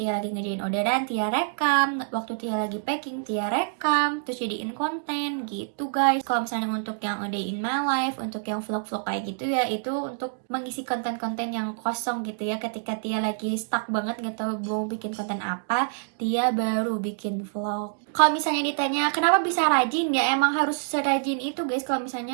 lagi ngerjain orderan, Tia rekam. Waktu Tia lagi packing, Tia rekam. Terus jadiin konten gitu guys. Kalau misalnya untuk yang A Day in My Life, untuk yang vlog-vlog kayak gitu ya, itu untuk mengisi konten-konten yang kosong gitu ya. Ketika Tia lagi stuck banget gak tahu mau bikin konten apa, Tia baru bikin vlog. Kalau misalnya ditanya kenapa bisa rajin, ya emang harus serajin itu guys. Kalau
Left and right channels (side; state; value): left; silent; digital silence